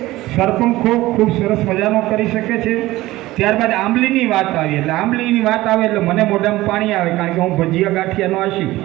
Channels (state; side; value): quieter; left; 17.6 dB